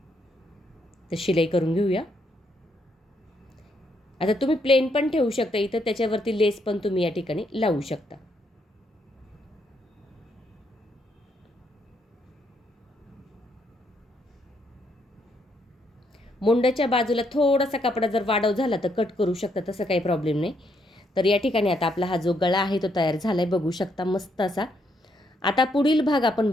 तर शिलाई करून घेऊया. आता तुम्ही प्लेन पण ठेवू शकता इथं, त्याच्यावरती लेस पण तुम्ही या ठिकाणी लावू शकता. मुंड्याच्या बाजूला थोडासा कपडा जर वाढव झाला तर कट करू शकता, तसं काही प्रॉब्लेम नाही. तर या ठिकाणी आता आपला हा जो गळा आहे तो तयार झाला आहे. बघू शकता मस्त असा. आता पुढील भाग आपण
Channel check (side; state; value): both; normal; correlation 0.75